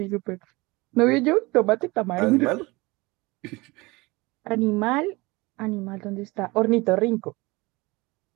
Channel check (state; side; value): quieter; left; 23.3 dB